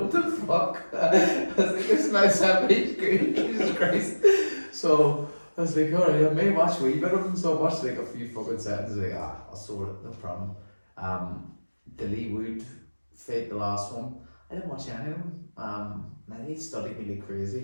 the fuck? I was like, this man's happy, he's good. Jesus Christ. So I was like, alright, I may watch a wee bit of him, so I watched like a few fucking seconds, like, I'll sort it, no problem. The Lee Wood fight, the last one, I didn't watch any of them. Now they studied me like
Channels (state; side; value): inverted; both; correlation -1.00